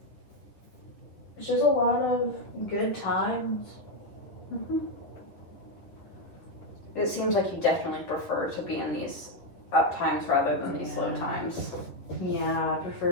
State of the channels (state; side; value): late; right; 10 ms